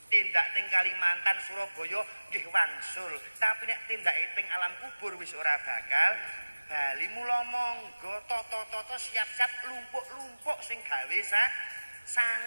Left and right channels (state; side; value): inverted; both; correlation -1.00